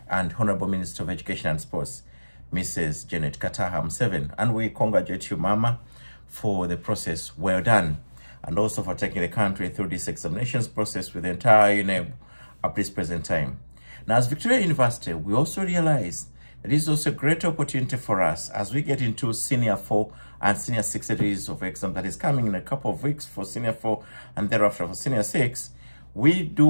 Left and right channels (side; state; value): both; inverted; correlation -1.00